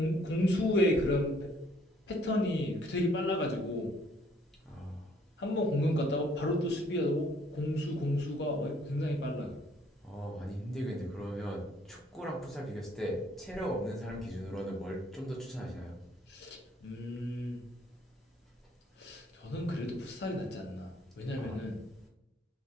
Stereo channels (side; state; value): both; normal; correlation 0.63